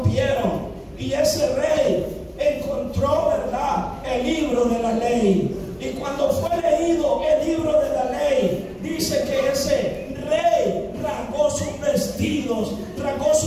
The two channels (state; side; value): identical; both; correlation 1.00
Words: Y ese rey encontró, ¿verdad?, el libro de la ley. Y cuando fue leído el libro de la ley, dice que ese rey rasgó sus vestidos, rasgó